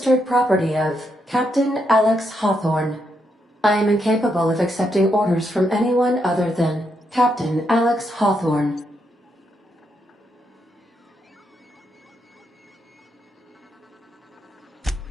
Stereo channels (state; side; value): normal; both; correlation 0.79